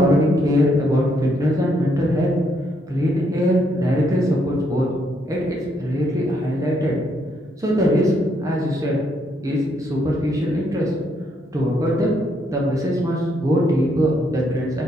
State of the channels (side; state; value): both; normal; correlation 0.73